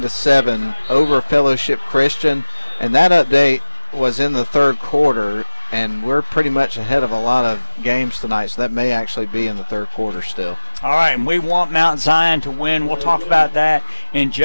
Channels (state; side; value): inverted; both; correlation -1.00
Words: over Fellowship Christian, and that update was in the third quarter, and we're pretty much ahead of a lot of games tonight, so that may actually be in the third quarter still. All right, and we want Mount Zion to win. We'll talk about that in